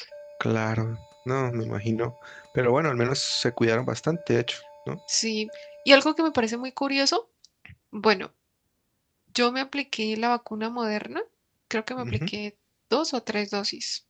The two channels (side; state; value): both; identical; correlation 1.00